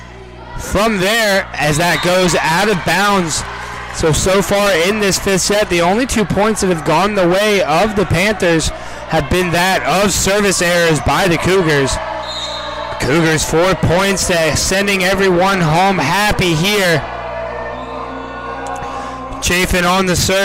from there as that goes out of bounds. So far in this 5th set, the only 2 points that have gone the way of the Panthers have been that of service errors by the Cougars. Cougars 4 points, sending everyone home happy here. Chafin on the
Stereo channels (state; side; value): identical; both; correlation 1.00